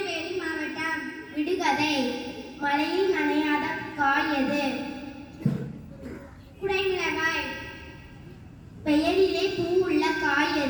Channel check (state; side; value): identical; both; correlation 1.00